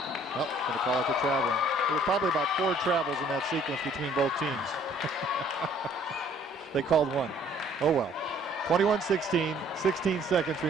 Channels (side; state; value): both; normal; correlation 0.59